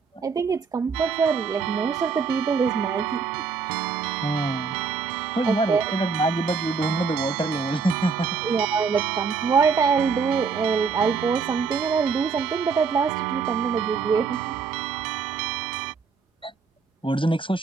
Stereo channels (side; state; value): left; quieter; 5.3 dB